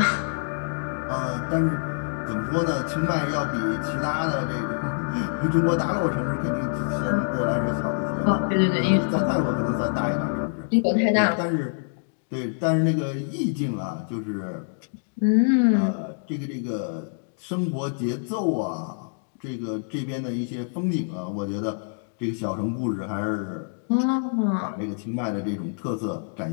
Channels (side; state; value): right; silent; digital silence